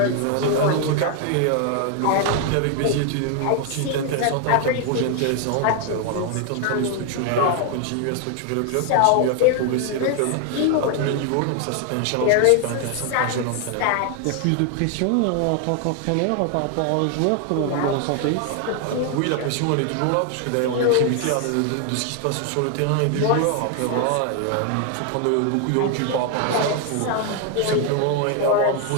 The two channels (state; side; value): different; both; correlation 0.00